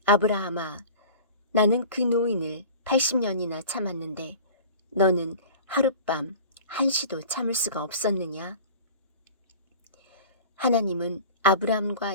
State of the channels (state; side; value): inverted; both; correlation -0.40